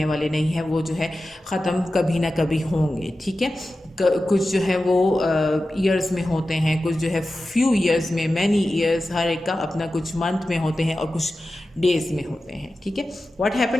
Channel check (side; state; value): both; normal; correlation 0.94